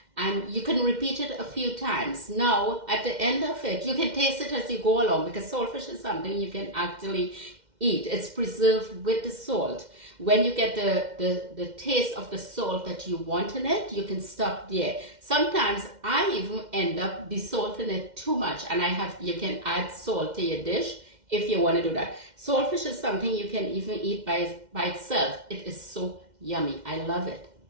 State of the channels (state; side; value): late; left; 2.1 ms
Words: and you can repeat it a few times. Now, at the end of it, you can taste it as you go along because saltfish is something you can actually eat. It's preserved with the salt. When you get the taste of the salt that you want in it, you can stop there. Sometimes I even end up desalting it too much, and you can add salt to your dish if you want to do that. Saltfish is something you can even eat by itself. It is so yummy. I love it.